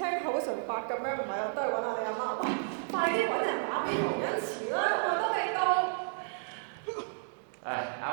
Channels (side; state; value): left; silent; 56 dB below the other